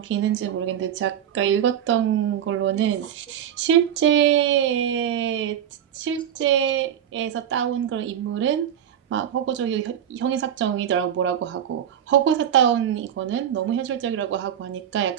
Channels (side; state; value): left; quieter; 9.8 dB